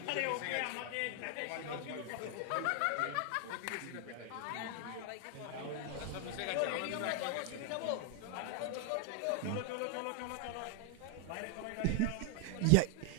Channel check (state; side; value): different; both; correlation 0.00